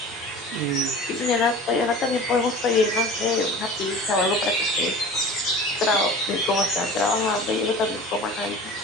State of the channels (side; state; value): both; normal; correlation 0.38